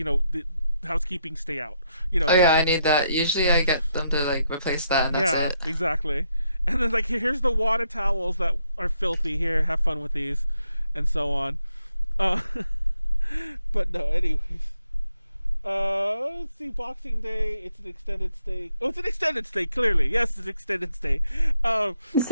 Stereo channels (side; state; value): both; inverted; correlation -0.77